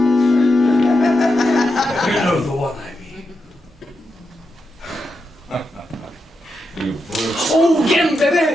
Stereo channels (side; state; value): both; normal; correlation 0.86